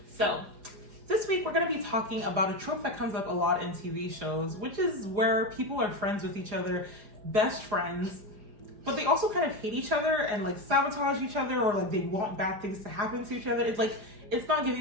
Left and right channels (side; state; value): left; late; 4.9 ms